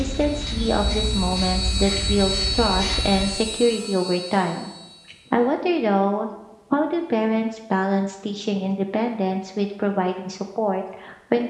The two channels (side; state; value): both; identical; correlation 1.00